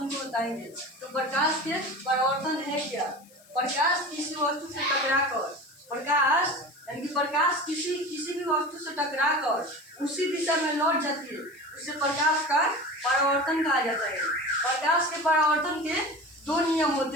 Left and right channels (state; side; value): noise; left; hiss, 27 dB below the sound